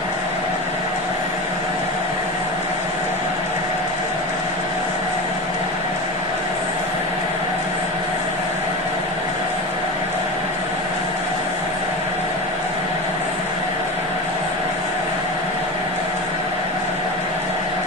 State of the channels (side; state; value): both; normal; correlation 0.26